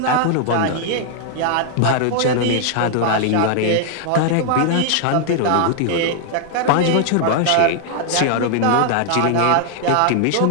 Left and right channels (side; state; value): both; different; correlation 0.00